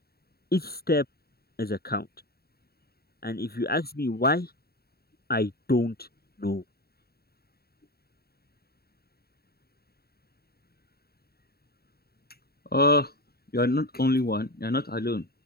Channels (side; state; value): right; late; 0.45 ms